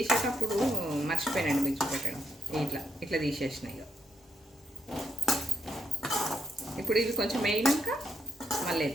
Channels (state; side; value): normal; both; correlation 0.79